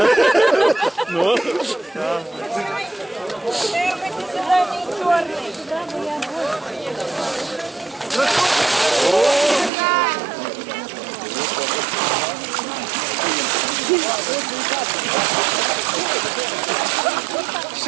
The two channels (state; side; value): drops out; left; at 9.7 s